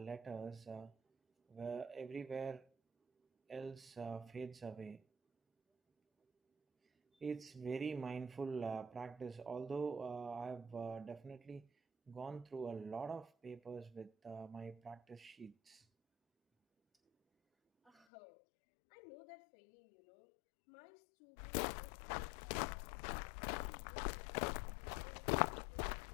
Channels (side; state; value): right; drops out; at 17.9 s